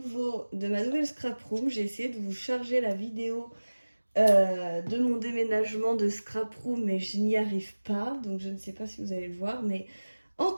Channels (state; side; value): inverted; both; correlation -1.00